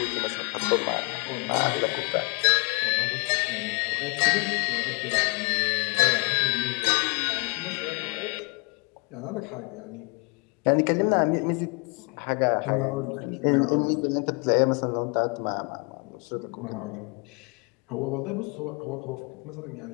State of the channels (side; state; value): right; quieter; 32.3 dB